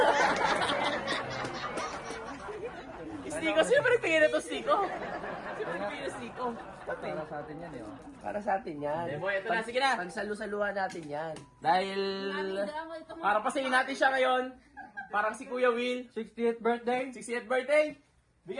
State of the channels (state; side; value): identical; both; correlation 1.00